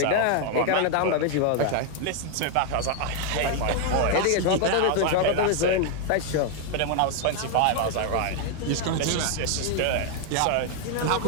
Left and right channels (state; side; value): different; both; correlation 0.00